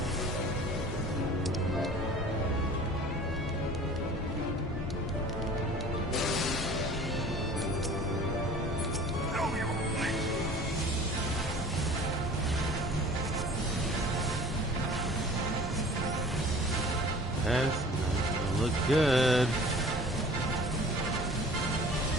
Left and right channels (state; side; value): normal; both; correlation 0.46